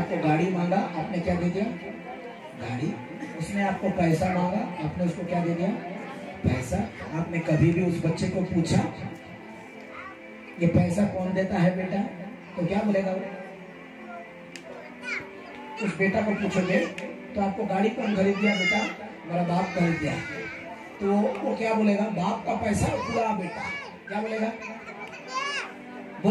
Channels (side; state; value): both; identical; correlation 1.00